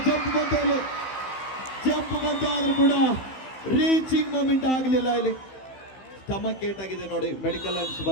ಜಂಪ್ ಬಂತು ಆದ್ರೂ ಕೂಡ ರೀಚಿಂಗ್ ಮೂಮೆಂಟ್ ಆಗಲಿಲ್ಲ. ಇಲ್ಲಿ ಸ್ಟಮಕ್ ಏಟ್ ಆಗಿದೆ ನೋಡಿ. ಮೆಡಿಕಲ್ ಅನ್ಸ್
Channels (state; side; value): late; right; 15 ms